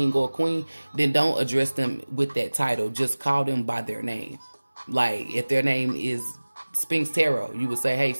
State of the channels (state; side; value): inverted; both; correlation -1.00